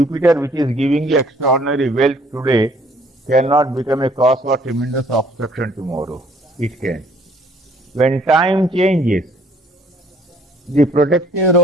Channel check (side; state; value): both; normal; correlation 0.60